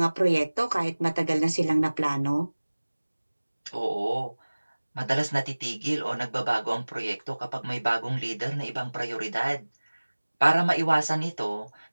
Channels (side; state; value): both; inverted; correlation -1.00